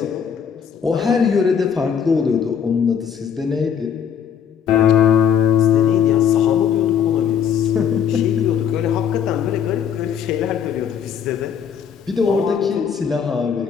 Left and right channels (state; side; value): quieter; right; 7.8 dB